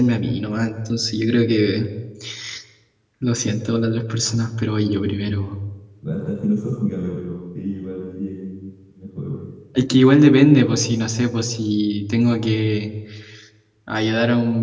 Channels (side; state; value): both; identical; correlation 1.00